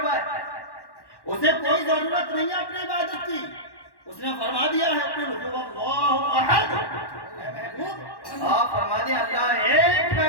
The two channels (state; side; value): late; right; 1.1 ms